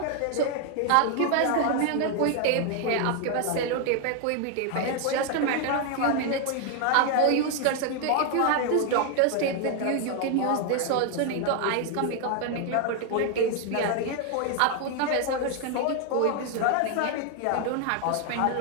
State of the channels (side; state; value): both; different; correlation 0.00